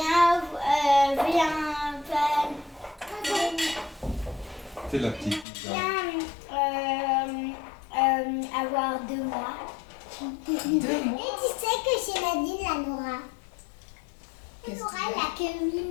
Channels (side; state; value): right; drops out; at 5.5 s